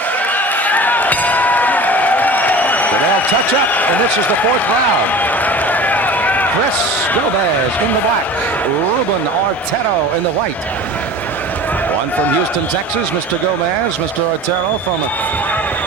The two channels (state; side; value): normal; both; correlation 0.38